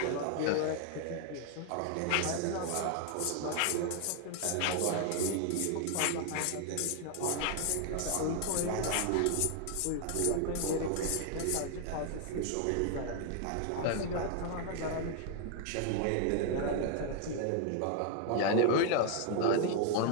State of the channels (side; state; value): both; different; correlation 0.00